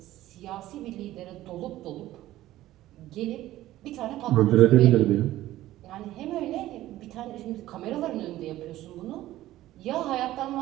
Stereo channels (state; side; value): quieter; left; 15.0 dB